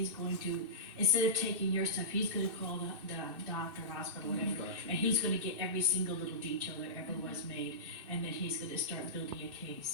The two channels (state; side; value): late; left; 2.6 ms